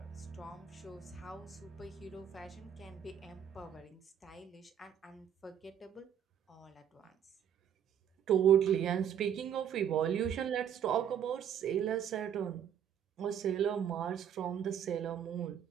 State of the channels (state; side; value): quieter; left; 9.0 dB